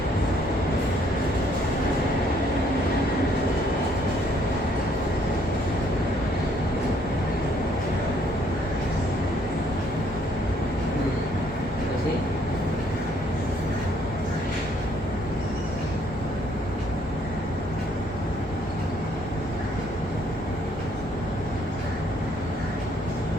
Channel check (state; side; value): normal; both; correlation 0.66